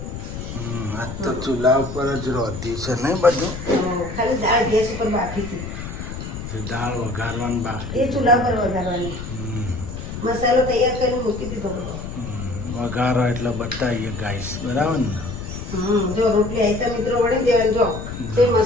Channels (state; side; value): noise; left; rumble, 8 dB below the sound